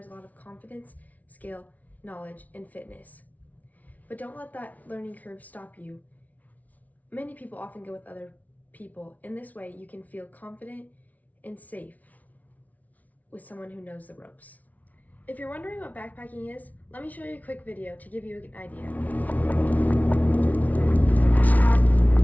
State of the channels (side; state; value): right; late; 0.073 ms